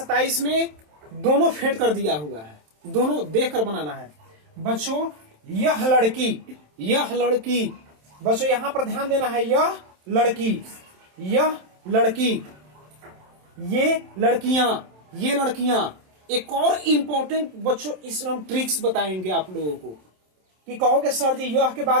में दोनों फेंट कर दिया हुआ है, दोनों देख कर बनाना है। बच्चों यह लड़की, यह लड़की, बच्चों यहां पर ध्यान देना है, यह लड़की, यह लड़की, ये लड़कियां, ये लड़कियां। एक और इंपॉर्टेंट बच्चों इसमें हम ट्रिक्स बताएंगे आप लोगों को कि कहोगे सर जी यह के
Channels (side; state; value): left; late; 27 ms